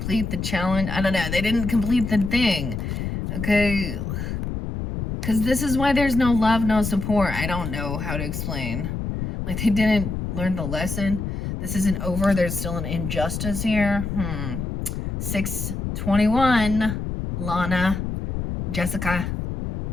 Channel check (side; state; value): left; noise; rumble, 4 dB below the sound